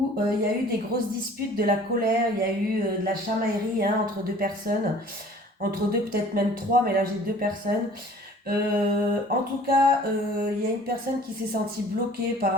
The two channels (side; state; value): both; normal; correlation 0.50